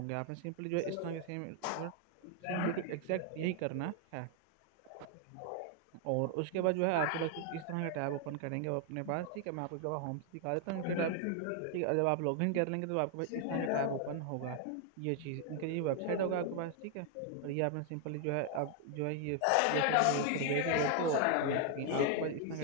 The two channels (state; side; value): different; both; correlation 0.00